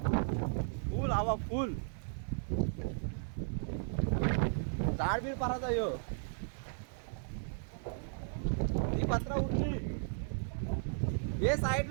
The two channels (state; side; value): silent; left; digital silence